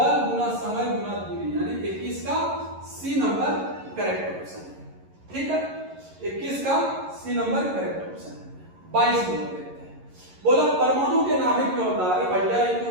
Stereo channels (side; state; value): left; late; 11 ms